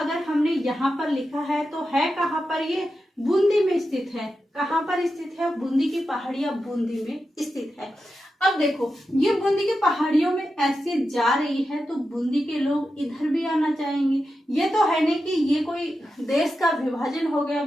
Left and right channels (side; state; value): both; normal; correlation 0.90